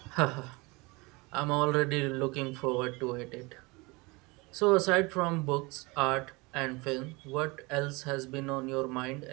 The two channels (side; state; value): left; quieter; 25.4 dB